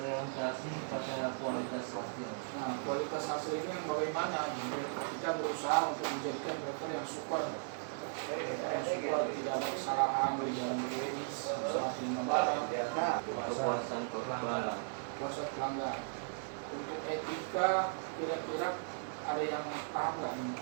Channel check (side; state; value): left; silent; digital silence